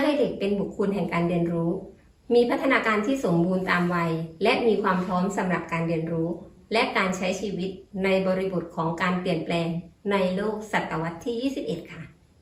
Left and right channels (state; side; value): identical; both; correlation 1.00